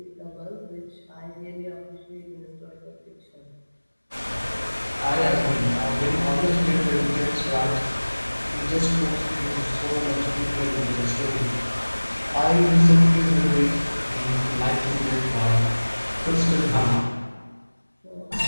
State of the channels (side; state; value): both; inverted; correlation -1.00